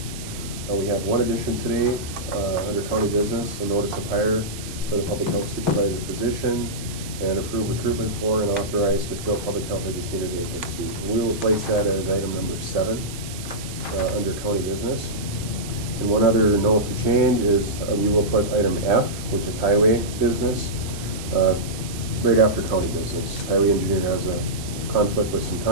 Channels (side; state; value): right; noise; hiss, 13 dB below the sound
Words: We have one addition today under county business, a notice of hire for the public health supervisor position, and approve recruitment for and authorize to fill public health educator vacancy. We will place that as item number 7 under county business. And one other note to change is we will put item F, which is highway business, right after county business. Highway engineer has a conflict with some